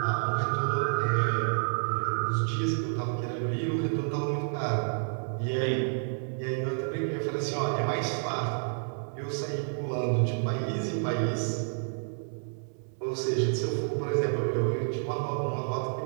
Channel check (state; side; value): silent; left; 58 dB below the other